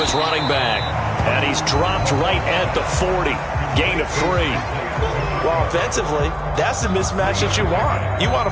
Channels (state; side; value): identical; both; correlation 1.00